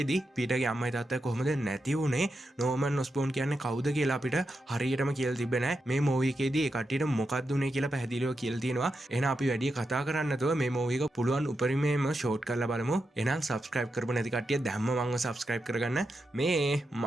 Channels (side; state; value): both; normal; correlation 0.87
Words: පීටර්ගේ අම්මයි තාත්තයි කොහොමද නැති වුනේ? Norman Osborn කියන්නේ කවුද කියලා අපිට හරියටම කියලා තිබ්බේ නැහැ. මේ movie එකේදී ඒ කට්ටියට මොකක්ද උනේ කියලා පැහැදිලිව කියලා තියෙනවා. එහෙනම් අපි වැඩි කතා කරන්න නැතුව මේ මූවි එක පුළුවන් උපරිමයෙන්ම ෂෝට් කරලා බලමු. එහෙනම් subscribe කරපු නැති කට්ටිය දැම්ම මංව subscribe කරගන්න. මේ